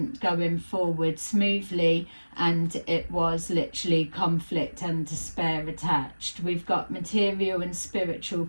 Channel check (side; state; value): both; inverted; correlation -1.00